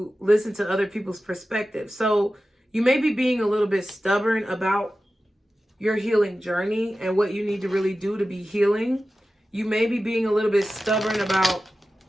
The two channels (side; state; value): both; normal; correlation 0.94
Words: listen to other people's perspectives. So you may be being a little bit stubborn about your healing journey and what you need to really do to be healing. You may be being a little bit stubborn about